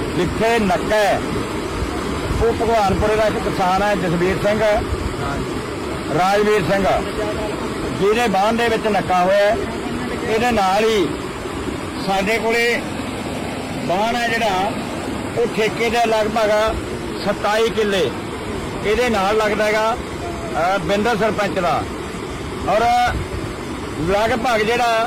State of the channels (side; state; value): both; identical; correlation 1.00